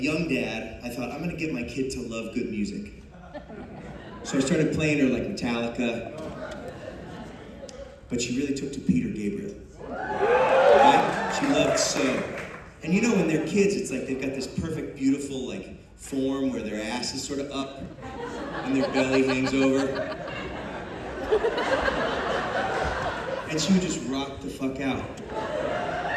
dad, I thought, I'm gonna get my kid to love good music. So I started playing her like Metallica, but she really took to Peter Gabriel. Right? She loved So. And you know, when they're kids, it's like they've got this perfect, beautiful, like, form where their ass is sort of up and their belly hangs over. And she would just rock the fuck out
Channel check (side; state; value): both; identical; correlation 1.00